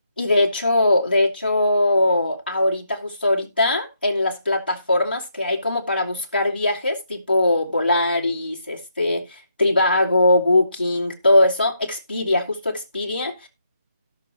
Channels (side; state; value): both; inverted; correlation -0.78